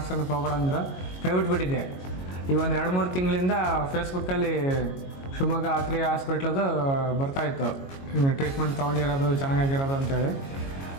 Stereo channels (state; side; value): late; right; 22 ms